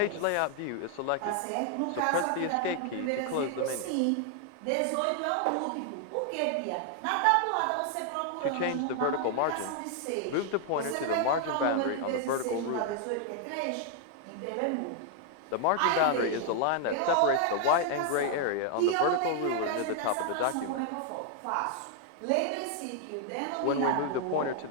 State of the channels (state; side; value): different; both; correlation 0.00